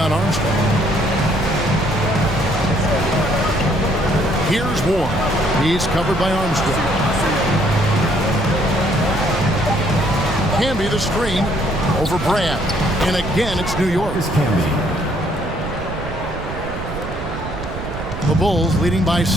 Armstrong. Here's Warren. He's covered by Armstrong. Can be the screen over Brand. And again, it's New York. Is Camby. The Bulls leading by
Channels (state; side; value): noise; right; rumble, 8 dB below the sound